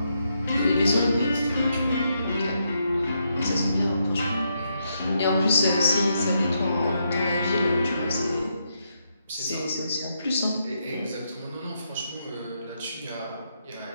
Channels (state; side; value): inverted; both; correlation -0.80